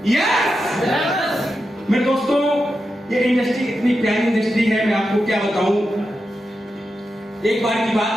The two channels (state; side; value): normal; both; correlation 0.89